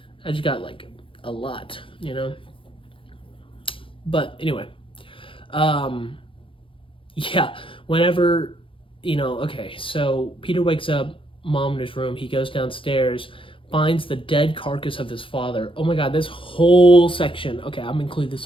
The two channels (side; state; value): right; late; 0.25 ms